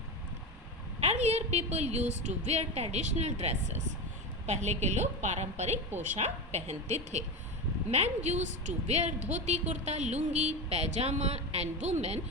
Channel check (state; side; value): normal; both; correlation 0.20